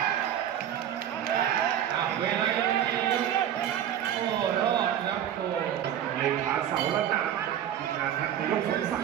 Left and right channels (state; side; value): quieter; left; 10.4 dB